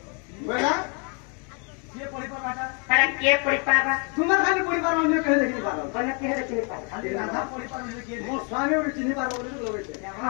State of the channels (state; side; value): quieter; right; 35.9 dB